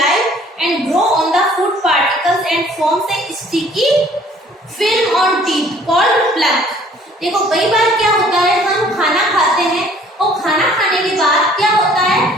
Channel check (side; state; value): both; normal; correlation 0.56